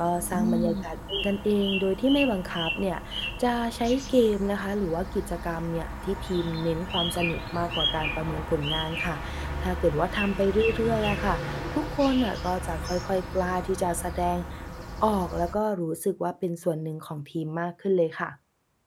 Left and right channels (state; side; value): identical; both; correlation 1.00